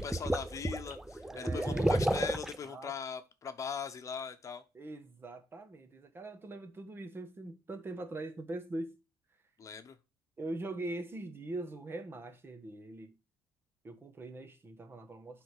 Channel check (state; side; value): normal; both; correlation 0.80